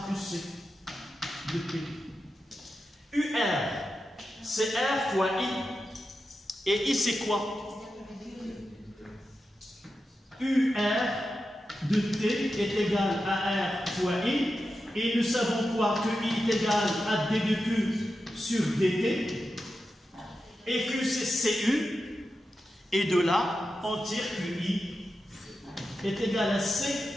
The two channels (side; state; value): both; normal; correlation 0.90